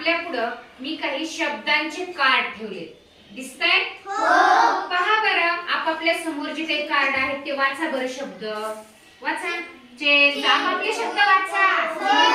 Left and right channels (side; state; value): both; identical; correlation 1.00